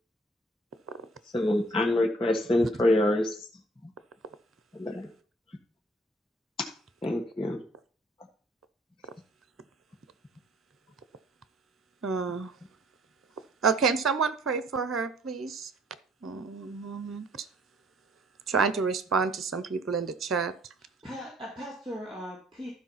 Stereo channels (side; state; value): both; normal; correlation 0.60